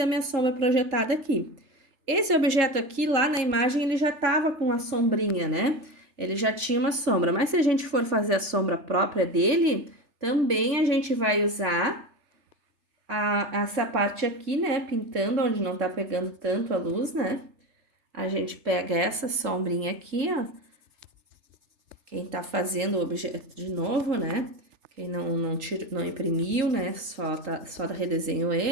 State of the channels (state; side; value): late; left; 3.3 ms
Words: a minha sombra projetada aqui. Esse objeto aqui, lá na imagem, ele já tava com a sombrinha, né? Ele já tinha uma sombra, mas se a gente for fazer a sombra própria dele, também a gente vai usar essa parte aqui, né? Pintando onde não tá pegando tanto a luz, né? A gente pega essa sombrinha aqui, ó. Quem tá fazendo o objeto de novo, né? Quem não imprimiu, né? Só redesenhou